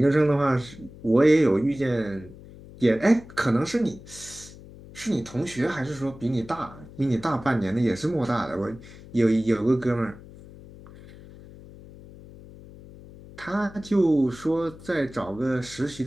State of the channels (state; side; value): noise; left; hum, 18 dB below the sound